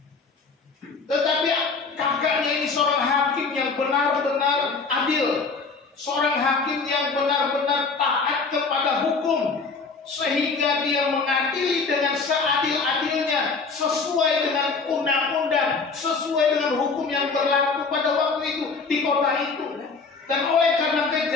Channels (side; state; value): right; quieter; 4.5 dB